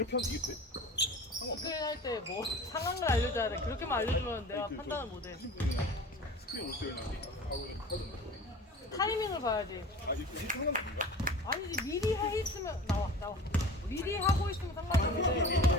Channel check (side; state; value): both; normal; correlation 0.39